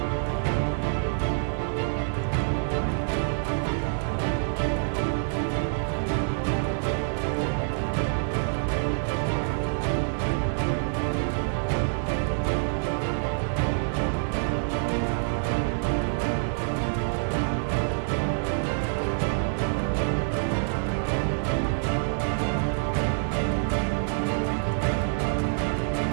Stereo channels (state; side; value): silent; left; digital silence